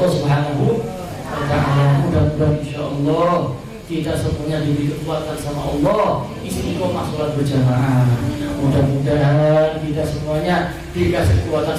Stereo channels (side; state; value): both; identical; correlation 1.00